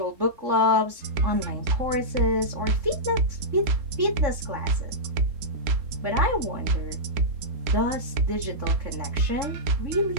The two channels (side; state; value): left; late; 3.7 ms